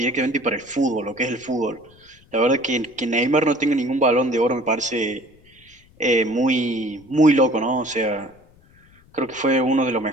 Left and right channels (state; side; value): noise; left; rumble, 29 dB below the sound